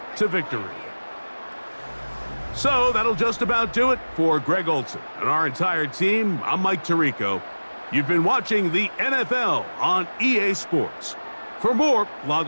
to victory. So, that'll just about do it for Greg Olson and our entire team. I'm Mike Tirico. You've been watching the NFL on EA Sports. For more,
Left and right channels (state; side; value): inverted; both; correlation -1.00